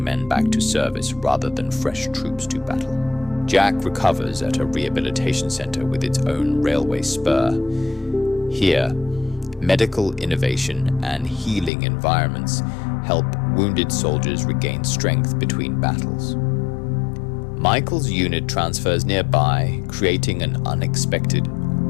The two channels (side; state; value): right; drops out; at 11.7 s